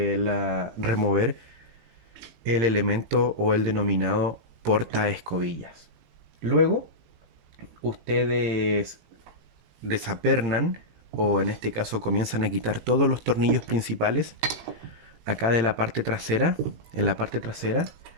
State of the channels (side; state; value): left; late; 18 ms